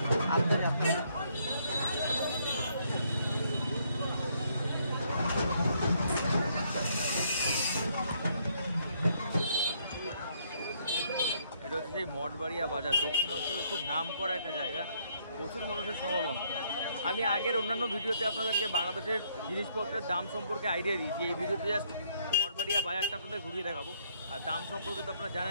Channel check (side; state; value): both; inverted; correlation -0.69